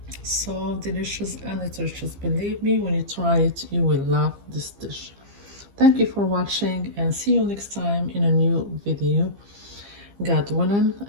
So delicious and nutritious. Believe me, when you try it, you will love this dish. Thank you for watching and see you next time in a new video. God willing,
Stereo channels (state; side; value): late; left; 15 ms